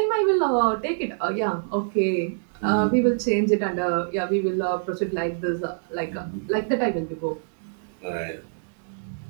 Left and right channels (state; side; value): silent; left; digital silence